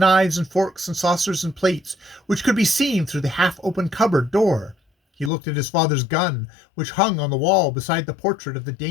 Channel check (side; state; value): right; drops out; at 5.3 s